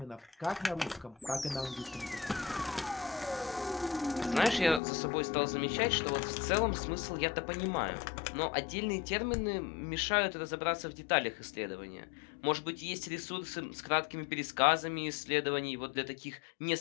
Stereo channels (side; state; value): right; drops out; at 4.8 s